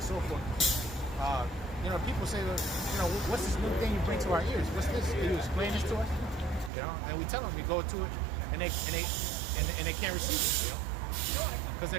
so forth. People say, what's this new thing you bring to our ears? What's this? Can you explain this to us? And we tell them, we go to it, and they can't receive it, because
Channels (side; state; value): left; drops out; at 6.7 s